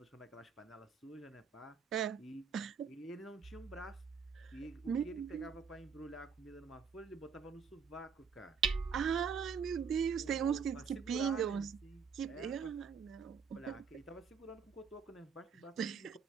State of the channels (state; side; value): quieter; left; 6.2 dB